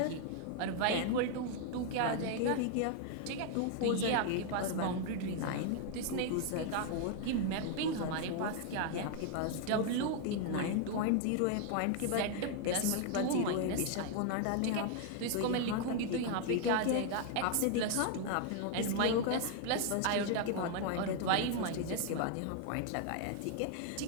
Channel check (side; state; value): both; different; correlation 0.00